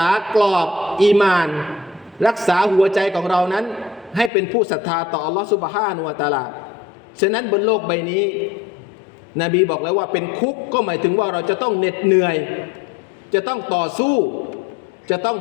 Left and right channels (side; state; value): right; drops out; at 4.3 s